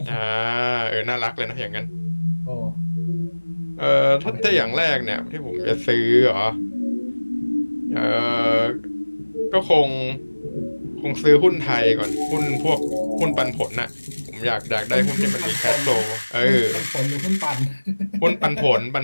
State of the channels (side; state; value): both; inverted; correlation -1.00